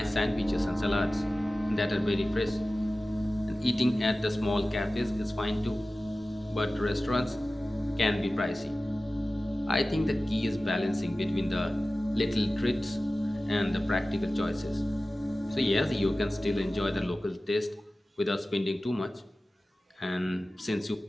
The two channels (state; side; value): normal; both; correlation 0.96